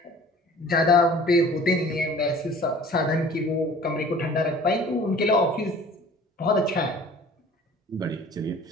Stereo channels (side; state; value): both; normal; correlation 0.47